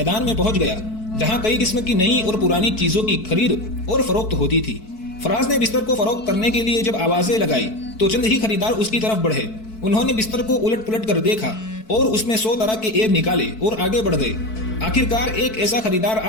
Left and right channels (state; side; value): late; right; 4.6 ms